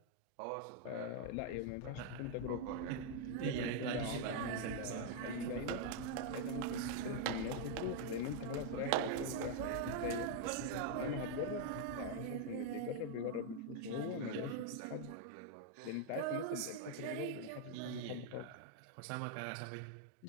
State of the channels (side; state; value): both; different; correlation 0.00